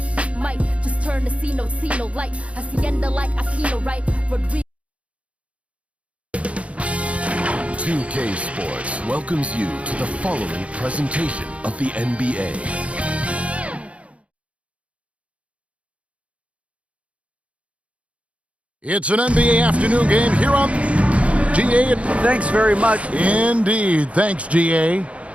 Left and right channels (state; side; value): late; left; 0.063 ms